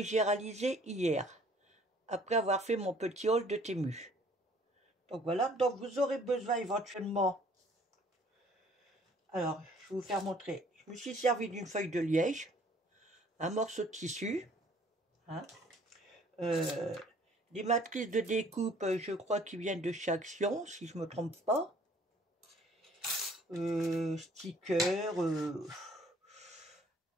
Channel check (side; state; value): both; normal; correlation 0.57